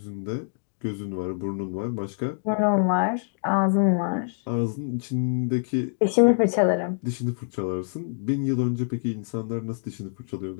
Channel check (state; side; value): silent; right; digital silence